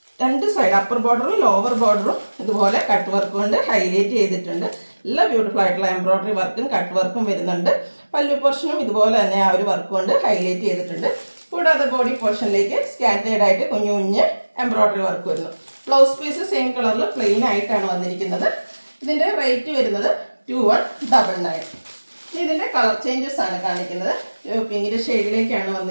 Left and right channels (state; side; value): inverted; both; correlation -1.00